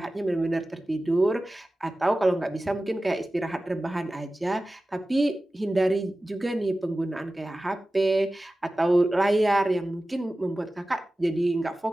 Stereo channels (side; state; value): both; normal; correlation 0.96